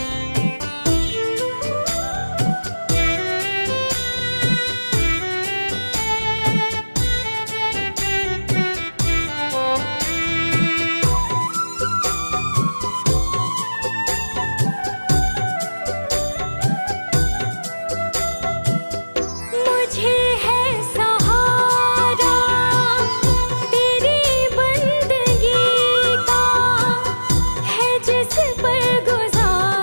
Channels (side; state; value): both; inverted; correlation -1.00